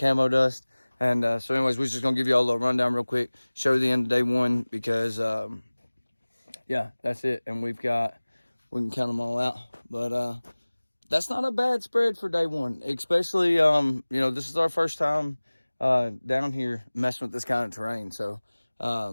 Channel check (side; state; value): both; inverted; correlation -1.00